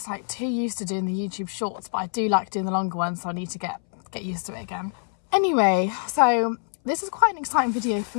like too used to doing the YouTube shorts, but I do like doing the longer ones, so I need to get used to it again. Anyway, so this is quite an exciting video for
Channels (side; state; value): right; silent; 62 dB below the other